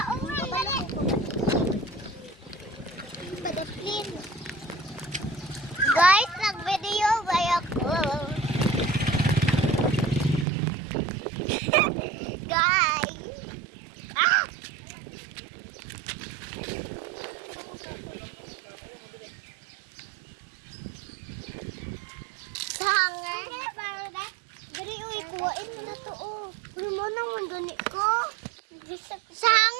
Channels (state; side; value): drops out; left; at 10.5 s